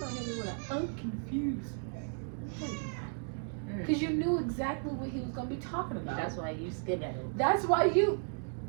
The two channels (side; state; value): left; silent; 55 dB below the other